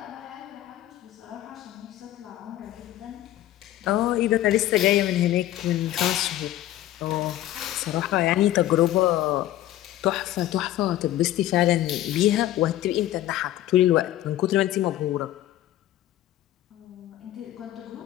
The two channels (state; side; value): quieter; right; 13.9 dB